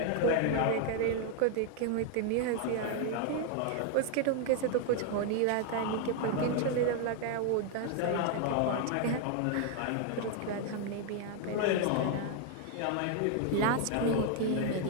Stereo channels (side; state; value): both; different; correlation 0.00